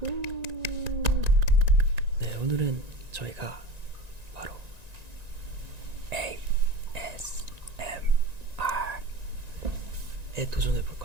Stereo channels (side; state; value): left; late; 1.9 ms